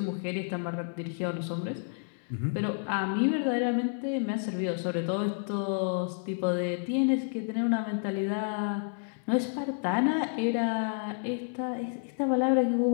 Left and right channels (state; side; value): silent; right; 58 dB below the other